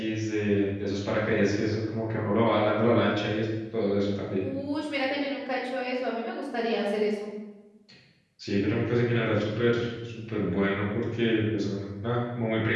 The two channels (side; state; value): both; identical; correlation 1.00